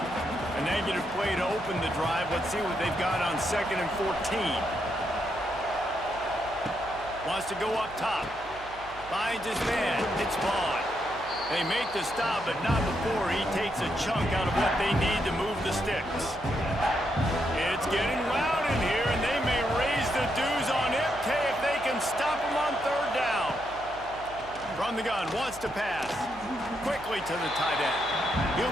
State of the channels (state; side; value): noise; right; hum, 18 dB below the sound